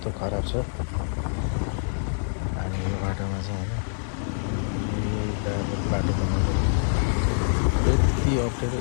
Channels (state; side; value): silent; right; 55 dB below the other